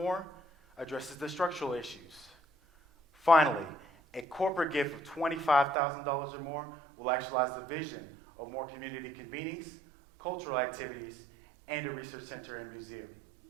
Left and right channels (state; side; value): drops out; left; at 5.8 s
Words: addresses the structural issues. Finally, a corporate gift of $25,000 or more will actualize the vision of more community convenings, cultural activities, and a research center and museum.